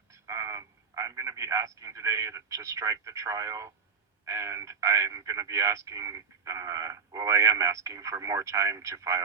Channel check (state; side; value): quieter; left; 5.3 dB